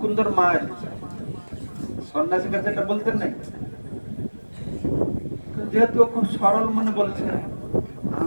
মা এসেছে। সন্ন্যাসীর কাছে এটা বলতেন নাই, যেহেতু খুব সরল মনে বলছে,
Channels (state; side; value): inverted; both; correlation -1.00